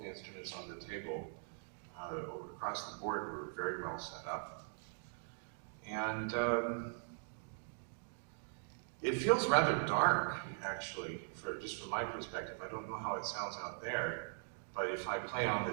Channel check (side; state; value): left; silent; digital silence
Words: the instruments on the table across the board were very well set up. And it feels rather dark, actually, just from my perspective. I don't know how it sounds out there, but if I play on the